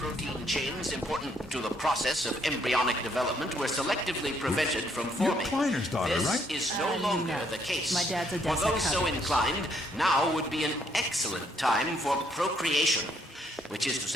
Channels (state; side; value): normal; both; correlation 0.70